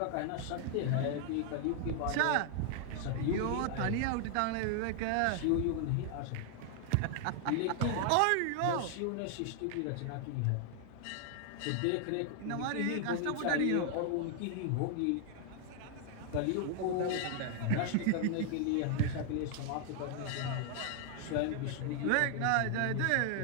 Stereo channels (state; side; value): different; both; correlation 0.00